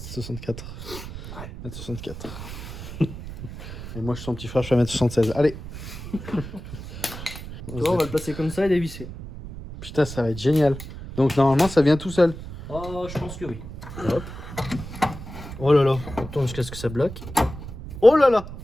Ouais. 1m64. Et moi, je suis son petit frère, je fais 1m76. Allez. Tu vois, on va le placer comme ça et dévisser. Putain, ça va être génial. Donc, normalement, ça vient tout seul. Oh, je pense que oui. Hop, Oh là là. on tourne jusqu'à ce que ça bloque. Oh là là.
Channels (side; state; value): right; noise; rumble, 11 dB below the sound